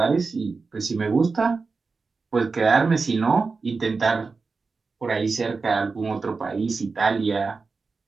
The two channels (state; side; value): quieter; left; 4.4 dB